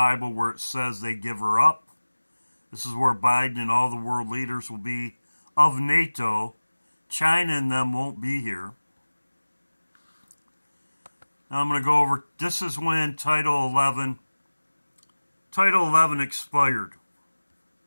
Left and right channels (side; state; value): both; inverted; correlation -1.00